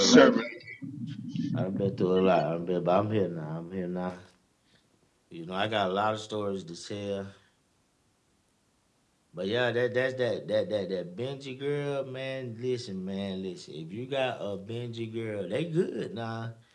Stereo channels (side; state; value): both; identical; correlation 1.00